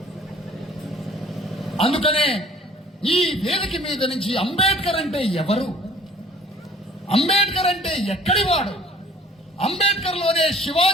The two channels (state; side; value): normal; both; correlation 0.52